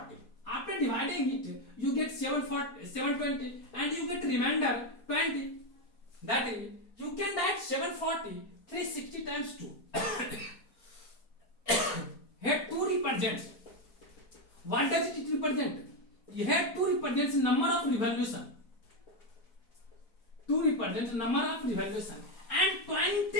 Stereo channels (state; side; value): late; right; 4.4 ms